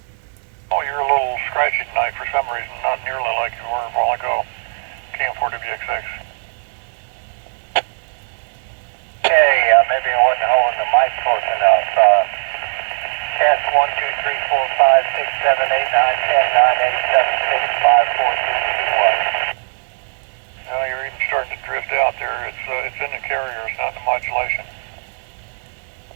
Oh, you're a little scratchy tonight for some reason, not nearly like you were a while ago. KM4WXX. Okay, maybe I wasn't holding the mic close enough. Test 1, 2, 3, 4, 5, 6, 7, 8, 9, 10, 9, 8, 7, 6, 5, 4, 3, 2, 1. Well, you're even starting to drift out there. It's in the carrier, it's not in the modulation.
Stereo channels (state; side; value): silent; left; digital silence